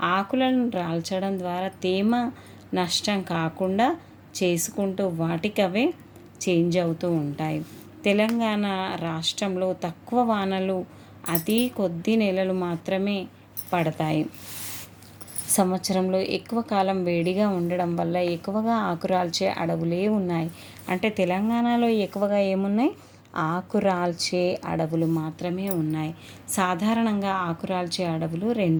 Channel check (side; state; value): both; identical; correlation 1.00